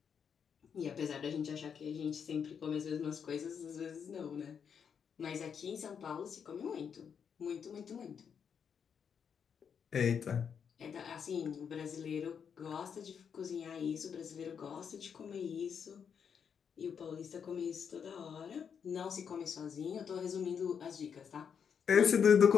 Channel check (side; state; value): right; quieter; 7.2 dB